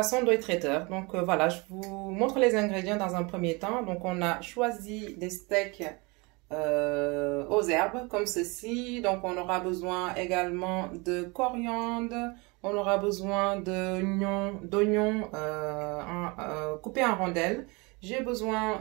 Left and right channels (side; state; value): left; quieter; 27.5 dB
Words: Ndoye Traiteur. Donc voilà, je vous montre les ingrédients dans un premier temps. Donc on a choisi des steaks aux herbes comme ceci. Donc on aura besoin également de coriandre. On aura besoin d'oignons coupés en rondelles. J'ai